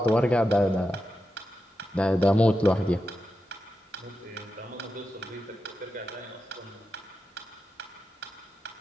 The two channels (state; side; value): normal; both; correlation 0.89